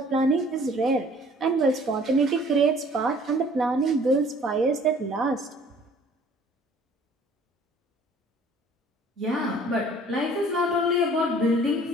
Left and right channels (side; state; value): both; normal; correlation 0.54